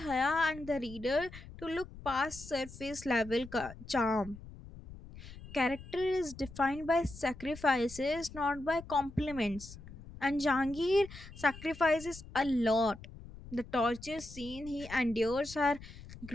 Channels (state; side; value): noise; left; rumble, 15 dB below the sound